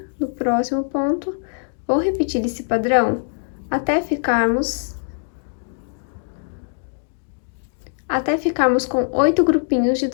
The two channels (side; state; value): right; silent; digital silence